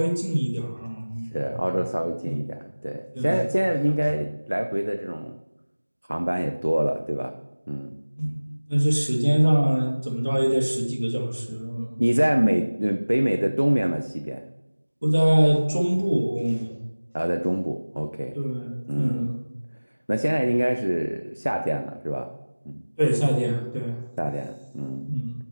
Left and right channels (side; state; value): both; inverted; correlation -1.00